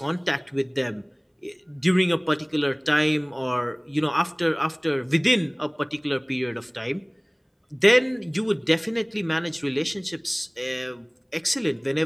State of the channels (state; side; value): identical; both; correlation 1.00